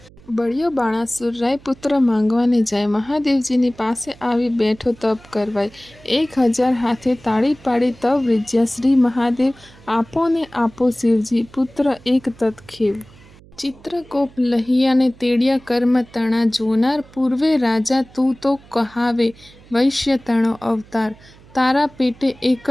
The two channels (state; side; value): noise; right; hum, 24 dB below the sound